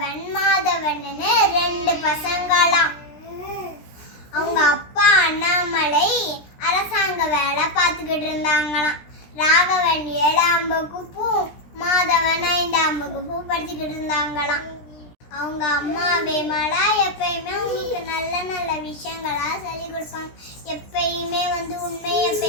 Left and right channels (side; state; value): right; late; 16 ms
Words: மாதவன்னு 2 பசங்களாம். அவங்க அப்பா அண்ணாமலை அரசாங்க வேலை பார்த்துக்கிட்டு இருந்தாங்களாம். ராகவன் 7ஆம் வகுப்பு, மாதவன் 5ஆம் வகுப்பு படிச்சுக்கிட்டு இருந்தாங்களாம். அவங்க அம்மா விமலா எப்பயுமே உங்களுக்கு நல்ல நல்ல விஷயங்களா சொல்லி கொடுப்பாங்க. எப்பயுமே உண்மையை